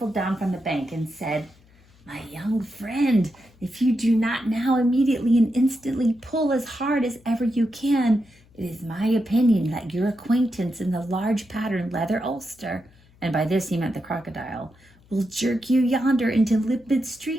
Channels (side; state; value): left; noise; hum, 29 dB below the sound